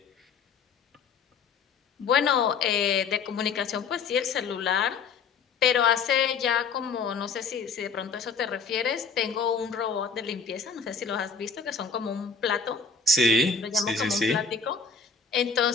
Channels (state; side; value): quieter; right; 5.3 dB